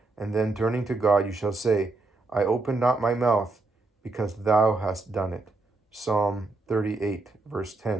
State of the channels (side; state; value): left; quieter; 3.3 dB